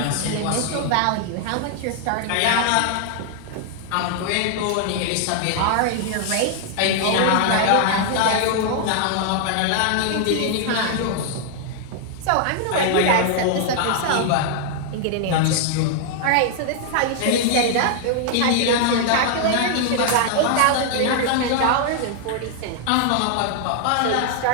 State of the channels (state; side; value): different; both; correlation 0.00